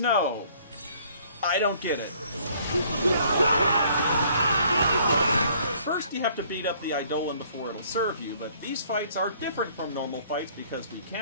I don't get it. First, you have to beat up the Eidolon before it'll serve you, but these fights are different from normal fights because we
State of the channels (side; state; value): both; inverted; correlation -0.60